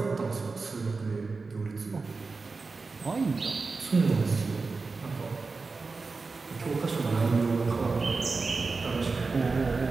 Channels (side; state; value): left; quieter; 4.1 dB